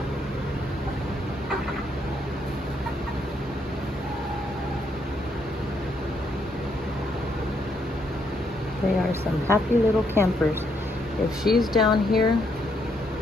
They are some happy little campers. If she's down here,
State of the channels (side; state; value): both; normal; correlation 0.74